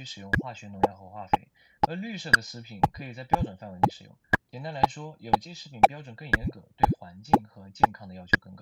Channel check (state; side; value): identical; both; correlation 1.00